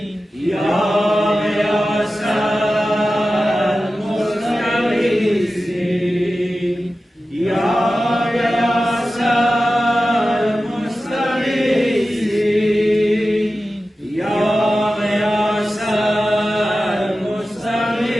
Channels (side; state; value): both; normal; correlation 0.94